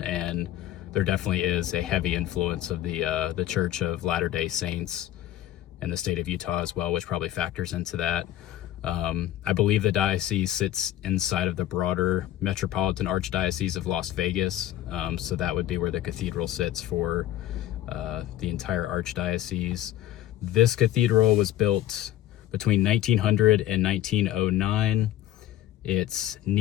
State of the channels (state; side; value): quieter; right; 13.0 dB